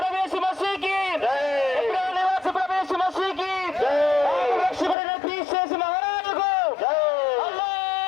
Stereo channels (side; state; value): right; drops out; at 5.0 s